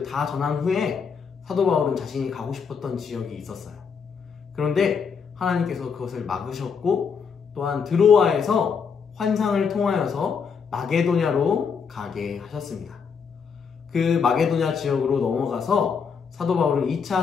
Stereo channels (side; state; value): right; quieter; 6.1 dB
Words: 다 전한 후에 사도 바울은 자신이 가고 싶었던 지역이 있었어요. 그런데 하나님께서 그것을 막으셨고, 또한 드로아에서 환상을 통하여서 마게도냐로 가게 하셨습니다. 그 마게도냐 지역으로 넘어가서 사도 바울은